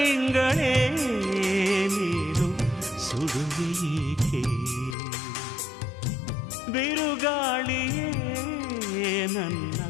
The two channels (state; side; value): drops out; right; at 5.0 s